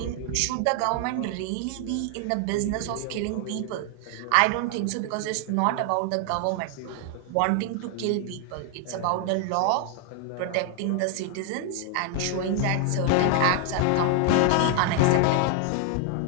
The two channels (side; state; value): both; different; correlation 0.00